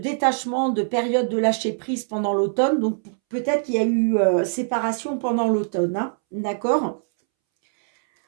de période de lâcher prise pendant l'automne. Donc, peut-être qu'il y a eu séparation pendant l'automne, hein, d'accord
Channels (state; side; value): silent; left; 64 dB below the other